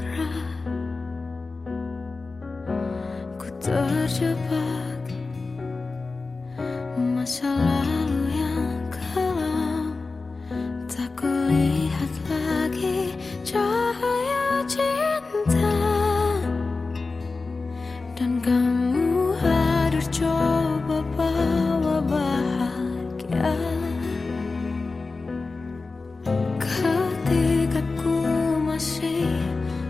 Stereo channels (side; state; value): right; quieter; 3.8 dB